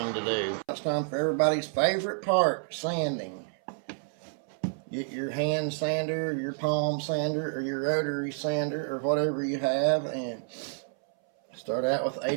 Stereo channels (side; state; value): left; silent; 58 dB below the other